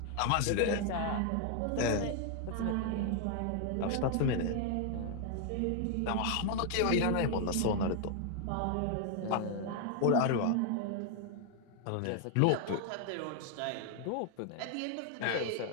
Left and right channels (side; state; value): both; different; correlation 0.00